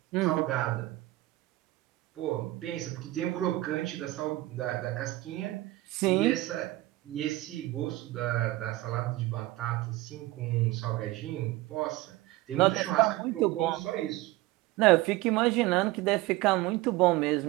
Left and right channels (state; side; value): quieter; left; 18.3 dB